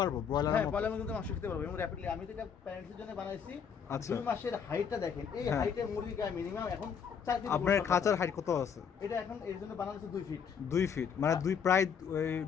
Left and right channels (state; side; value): quieter; right; 7.0 dB